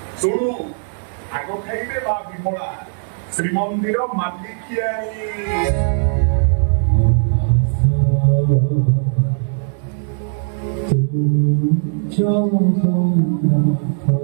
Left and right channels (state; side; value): silent; left; 66 dB below the other